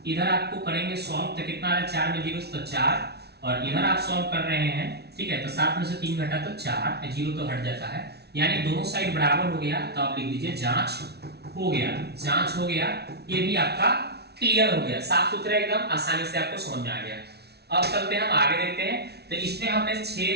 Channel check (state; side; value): late; left; 0.48 ms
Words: इधर आपको करेंगे सॉल्व, तो कितना आ रहा है 4 में 0 से तो 4, और इधर आप सॉल्व कर रहे हैं। ठीक है, तो 7 में से 3 घटा तो 4, 0 तो हट जाता है, यानी दोनों साइड बराबर हो गया। तो आप लिख दीजिए जांच हो गया, जांच हो गया। ये भी आपका क्लियर हो गया, साफ सुथरा एकदम आसानी से आपको समझ में आ गया। अब चलते हैं हम आगे देखते हैं। तो इसमें हमने